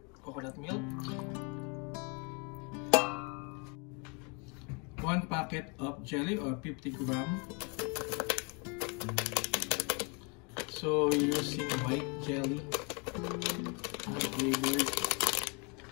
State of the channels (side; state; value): right; quieter; 32.5 dB